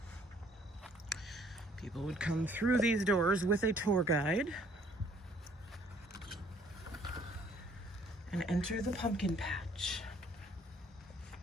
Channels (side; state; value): both; normal; correlation 0.61